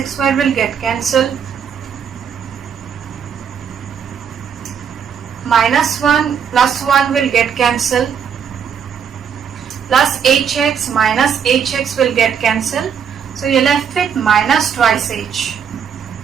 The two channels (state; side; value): quieter; left; 7.5 dB